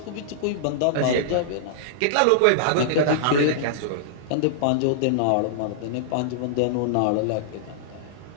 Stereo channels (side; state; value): both; different; correlation -0.02